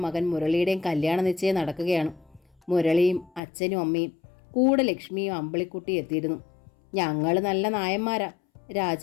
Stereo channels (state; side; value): drops out; right; at 3.4 s